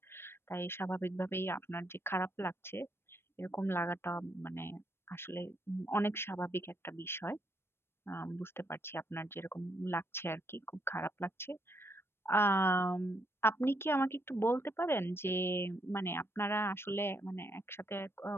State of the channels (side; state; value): right; late; 0.12 ms